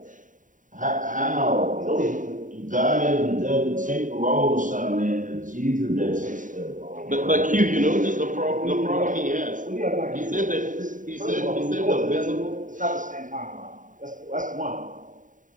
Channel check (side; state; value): left; late; 0.38 ms